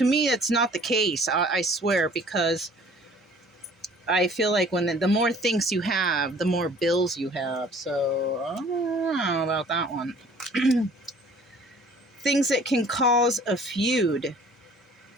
me, that's not the case, I swear, because I feel like when the more things you have, the more bills you have. So I don't know about that one. Things that can cause a feud.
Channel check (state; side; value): normal; both; correlation 0.52